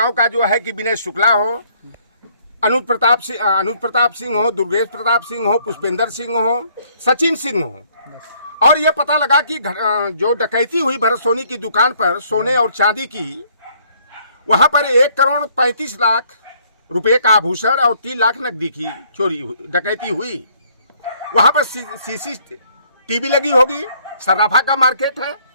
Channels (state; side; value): inverted; both; correlation -0.64